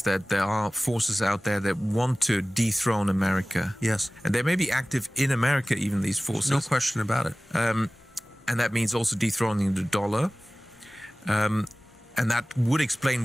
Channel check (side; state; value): both; normal; correlation 0.98